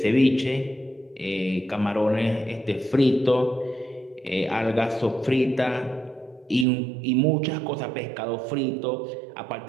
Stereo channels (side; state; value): left; drops out; at 6.7 s